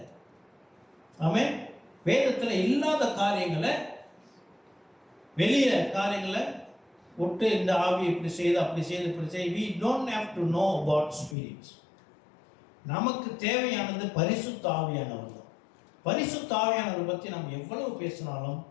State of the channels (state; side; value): drops out; right; at 11.4 s